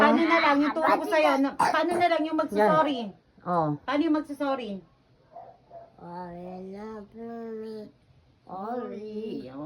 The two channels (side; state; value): both; identical; correlation 1.00